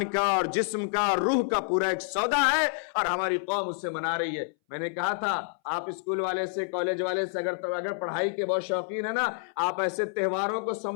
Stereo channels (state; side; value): silent; right; 59 dB below the other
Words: کا اور جسم کا اور روح کا پورا ایک سودا ہے، اور ہماری قوم اس سے منا رہی ہے۔ میں نے کہا تھا آپ اسکول والے سے، کالج والے سے اگر پڑھائی کے بہت شوقین ہے نا، آپ ایسے تہواروں کو